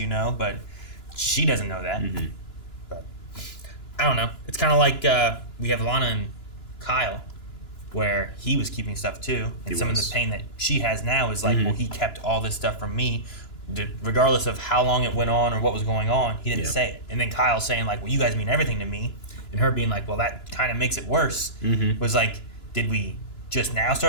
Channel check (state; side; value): late; right; 2.9 ms